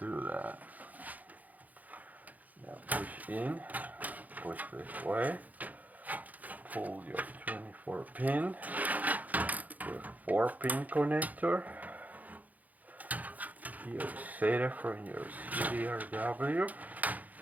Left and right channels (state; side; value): late; left; 0.079 ms